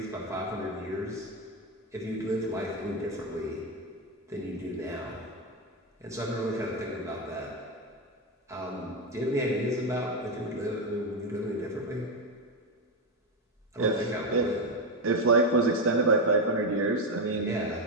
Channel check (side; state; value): both; normal; correlation 0.09